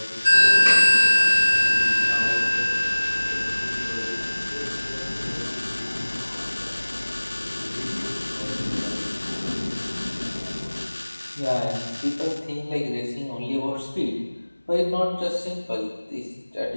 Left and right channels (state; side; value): inverted; both; correlation -1.00